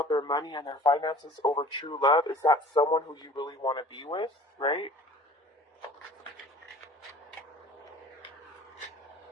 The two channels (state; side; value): normal; both; correlation 0.46